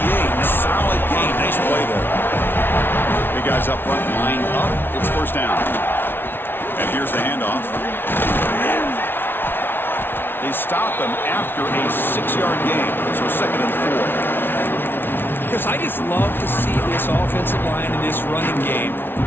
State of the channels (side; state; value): right; late; 0.11 ms